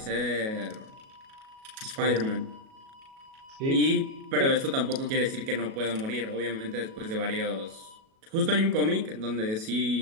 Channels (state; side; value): late; left; 37 ms